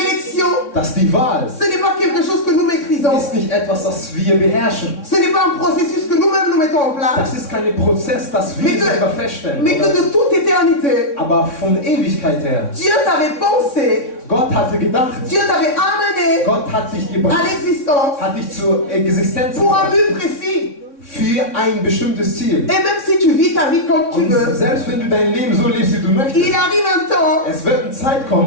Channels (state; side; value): late; right; 3.6 ms